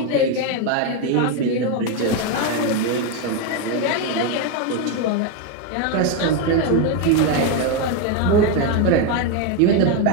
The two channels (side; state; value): both; different; correlation 0.02